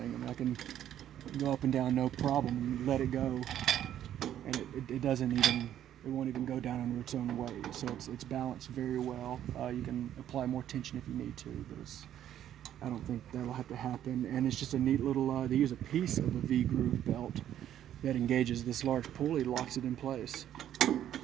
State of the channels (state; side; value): quieter; left; 11.1 dB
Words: I mean, I can go up and down no problem and let it go, and it won't even go down under its own weight. So it's balanced very well. You can apply more tension if you need to, but I don't think that'll have to happen. And it's just a neat little, they use a piece of a V-groove belt that engages this large pulley, locks it in place. And